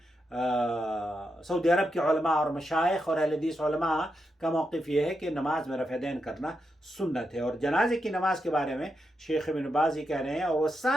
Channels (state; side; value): normal; both; correlation 0.85